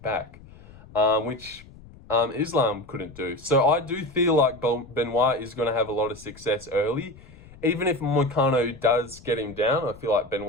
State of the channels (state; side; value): noise; left; rumble, 21 dB below the sound